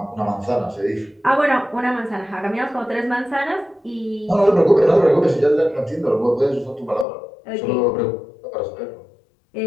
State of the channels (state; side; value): drops out; right; at 7.1 s